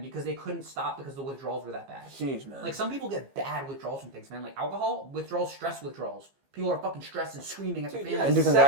because they couldn't stop because the withdrawals were that bad. Jeez, man. Some people get bad withdrawals from things, man. Alcohol withdrawals, stress withdrawals. People are fucking stressed and screaming at the Dude, family. yeah, And sex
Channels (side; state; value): left; late; 15 ms